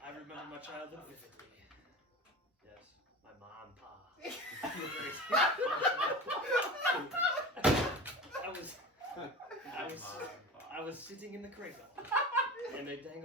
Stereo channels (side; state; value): both; normal; correlation 0.31